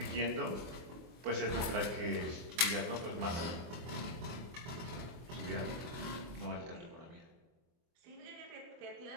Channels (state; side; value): late; left; 23 ms